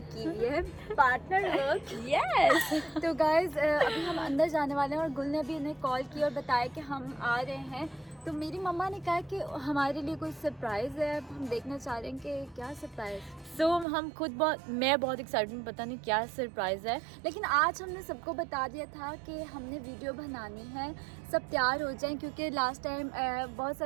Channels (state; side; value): drops out; left; at 13.9 s